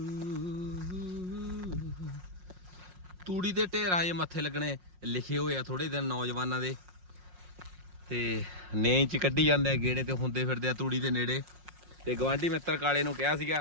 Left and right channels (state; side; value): late; left; 5.5 ms